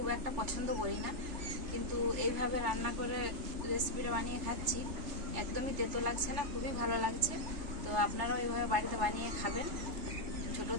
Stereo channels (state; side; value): late; left; 3.3 ms